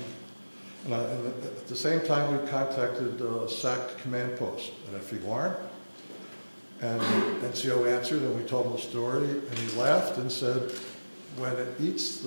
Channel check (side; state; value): both; inverted; correlation -1.00